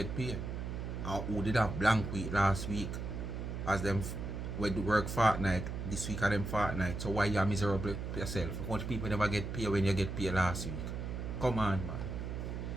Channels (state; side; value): noise; right; hum, 5 dB below the sound